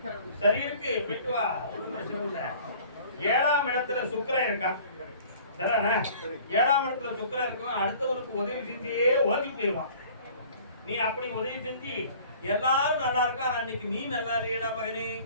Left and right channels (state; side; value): inverted; both; correlation -0.49